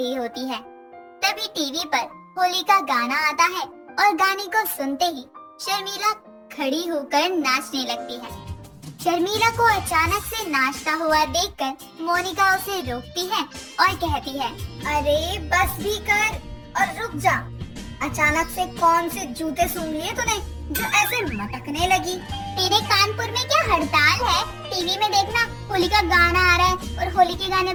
होती है। तभी टीवी पर होली का गाना आता है और गाने को सुनते ही शर्मिला खड़ी होकर नाचने लगती है। शर्मिला को अचानक से नाचता हुआ देखकर मोनिका उसे रोकती है और कहती है, अरे बस भी कर और रुक जा। अचानक से कौन से जूते सूंघ लिए तूने जो ऐसे मटकने लगी? तेरे कानपुर में क्या हड़ताल है? टीवी में देखना होली का गाना आ रहा है और होली के गाने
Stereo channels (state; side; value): identical; both; correlation 1.00